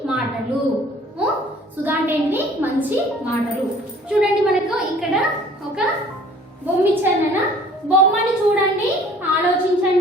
మాటలు. సుధ అంటే ఏంటిది? మంచి మాటలు. చూడండి, మనకు ఇక్కడ ఒక బొమ్మ ఇచ్చారు. బొమ్మని చూడండి,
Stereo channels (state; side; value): normal; both; correlation 0.52